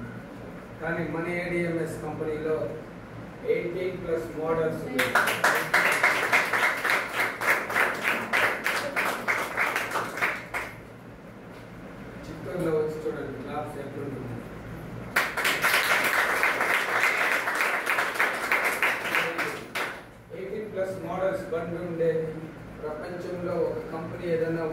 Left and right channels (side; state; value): both; identical; correlation 1.00